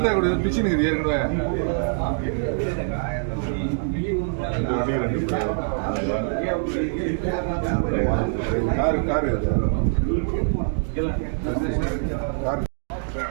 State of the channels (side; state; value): left; silent; digital silence